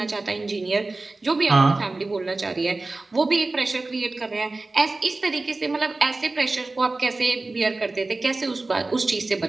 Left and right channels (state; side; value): quieter; left; 3.3 dB